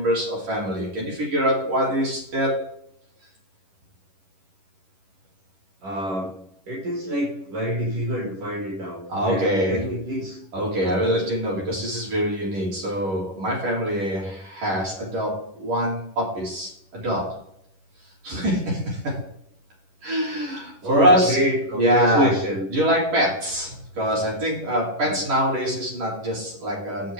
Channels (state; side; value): late; left; 11 ms